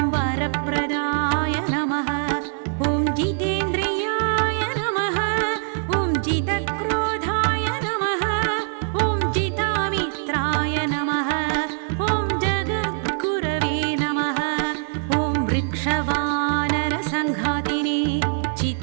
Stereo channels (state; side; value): silent; left; 63 dB below the other